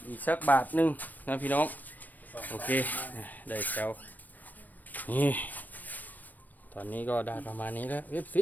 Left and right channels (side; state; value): right; late; 0.085 ms